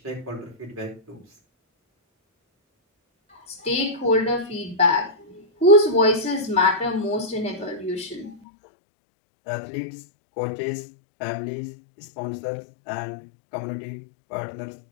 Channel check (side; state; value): right; drops out; at 8.4 s